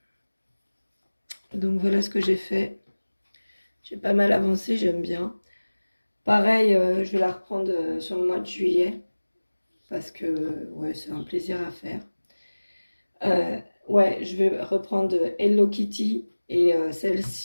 Donc voilà ce que j'ai fait. J'ai pas mal avancé, j'aime bien. Pareil, je vais la reprendre sur le mois de juillet. Parce que ouais, c'est un plaisir à faire. Ouais, je vais reprendre Hello Kitty et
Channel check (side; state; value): both; inverted; correlation -1.00